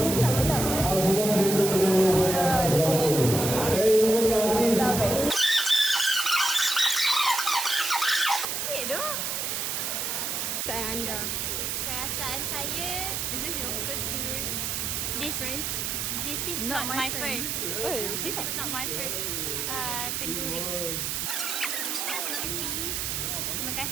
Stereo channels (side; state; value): right; noise; hiss, 1 dB below the sound